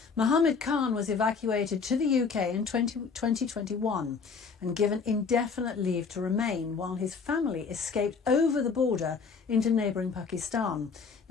Mohammed Khan was evacuated to the UK in 2021 and given indefinite leave to remain while his family escaped over the border into neighbouring Pakistan.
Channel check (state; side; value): quieter; right; 5.3 dB